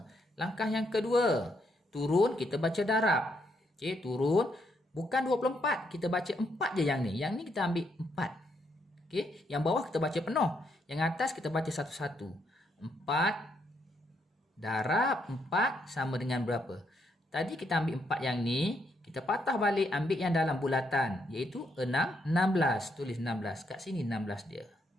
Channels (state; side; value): normal; both; correlation 0.76